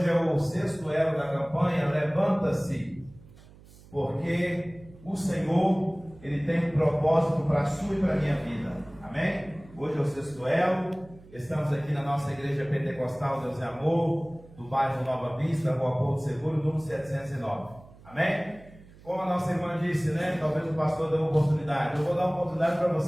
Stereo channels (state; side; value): noise; right; hum, 22 dB below the sound